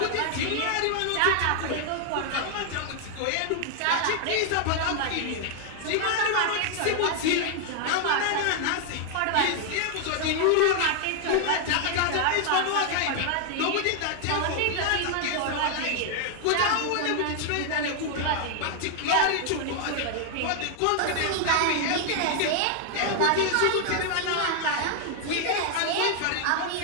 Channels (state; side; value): different; both; correlation 0.00